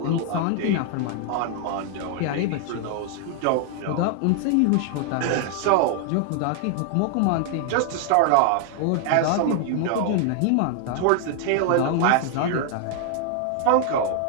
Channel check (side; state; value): both; different; correlation 0.00